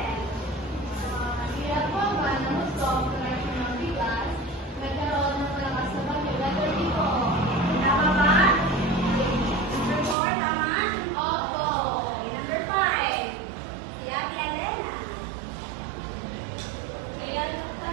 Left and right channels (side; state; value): left; drops out; at 10.2 s